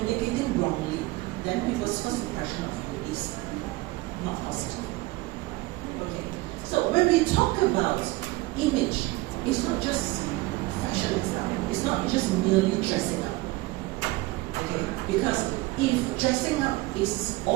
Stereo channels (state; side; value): quieter; left; 20.8 dB